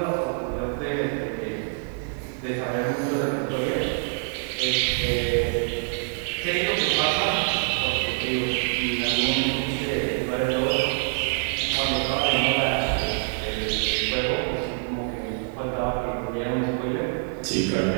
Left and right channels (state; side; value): silent; left; 61 dB below the other